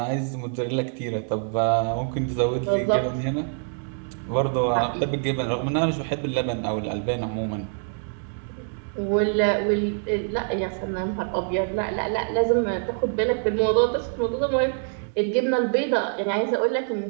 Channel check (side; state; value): left; silent; 58 dB below the other